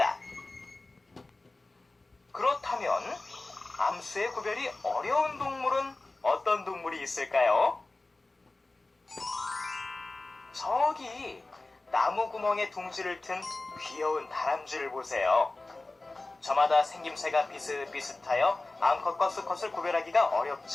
그렇다면 암수의 구별이 어려운 동물은 어떤 동물이 있을까요? 저기 나무 구멍에 둥지를 튼 귀여운 다람쥐를 보세요. 저마다 생김새가 비슷비슷하여 암컷과 수컷을 구별하기가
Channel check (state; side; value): quieter; right; 3.1 dB